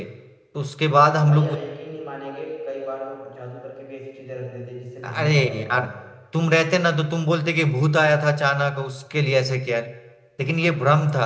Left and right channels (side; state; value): both; identical; correlation 1.00